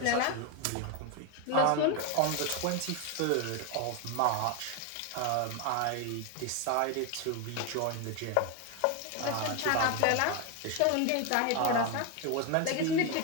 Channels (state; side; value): different; both; correlation 0.01